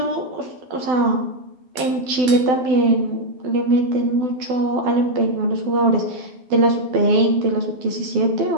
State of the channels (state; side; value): late; left; 12 ms